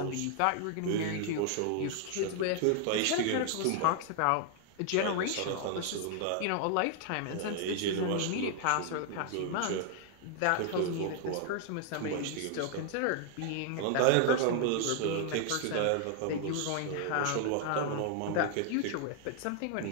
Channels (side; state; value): both; different; correlation 0.00